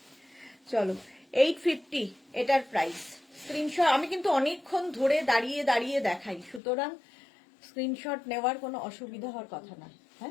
চলো 850 এটার প্রাইস। স্ক্রিনশট, আমি কিন্তু অনেকক্ষণ ধরে দাঁড়িয়ে দেখাই, সুতরাং স্ক্রিনশট নেওয়ার কোনো অসুবিধা হওয়ার কথা না।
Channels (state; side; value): drops out; right; at 6.6 s